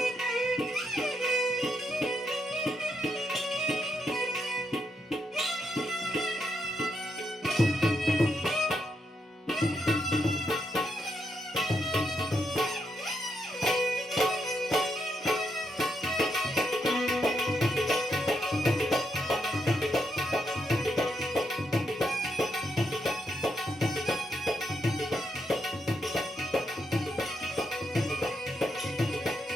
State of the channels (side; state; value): both; normal; correlation 0.80